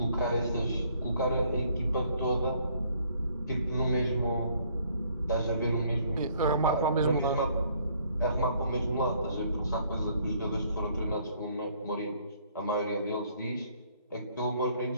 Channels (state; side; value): inverted; both; correlation -0.64